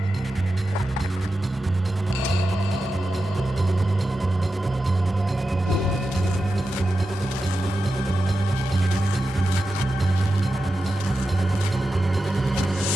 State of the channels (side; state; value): both; normal; correlation 0.91